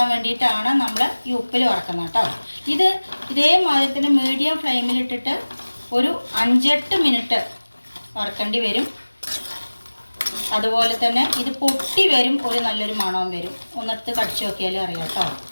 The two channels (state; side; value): inverted; both; correlation -1.00